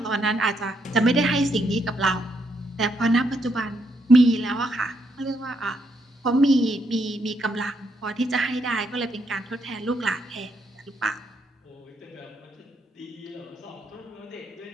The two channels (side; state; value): both; normal; correlation 0.76